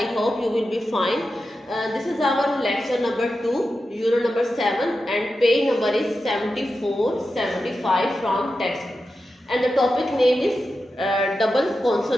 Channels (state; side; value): normal; both; correlation 0.91